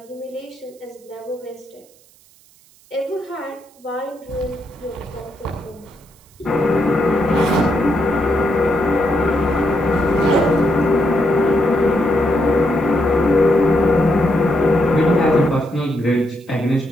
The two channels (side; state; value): right; noise; hiss, 29 dB below the sound